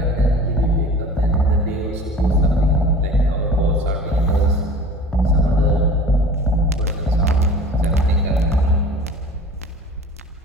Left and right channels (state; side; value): normal; both; correlation 0.41